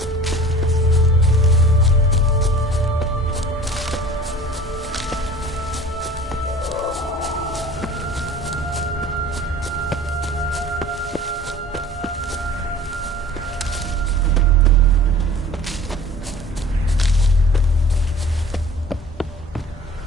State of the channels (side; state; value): both; normal; correlation 0.43